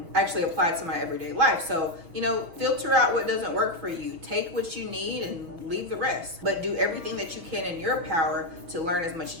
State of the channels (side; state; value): left; late; 6.2 ms